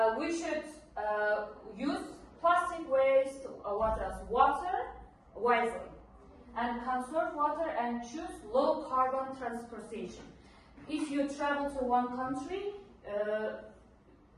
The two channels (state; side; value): identical; both; correlation 1.00